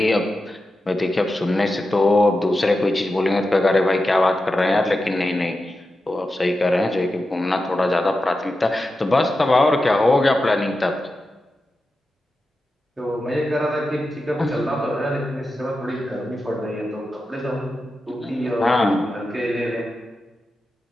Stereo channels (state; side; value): normal; both; correlation 0.91